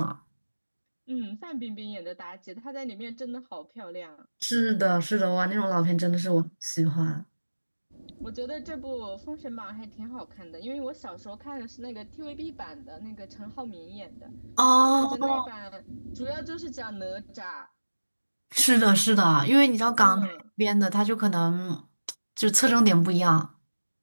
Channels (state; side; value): inverted; both; correlation -1.00